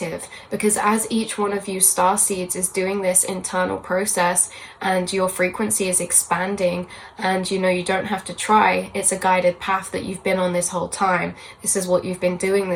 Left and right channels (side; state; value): both; identical; correlation 1.00